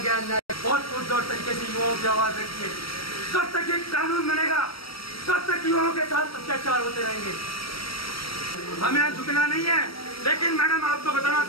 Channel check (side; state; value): right; late; 0.75 ms